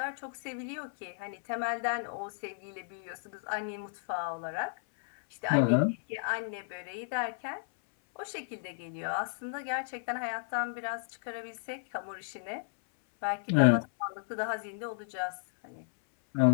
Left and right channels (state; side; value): silent; right; 55 dB below the other